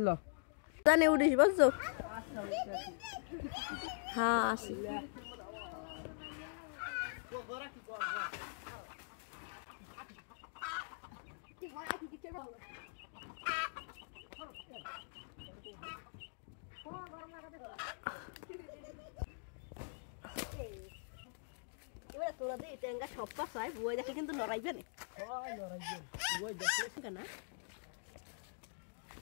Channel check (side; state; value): right; silent; digital silence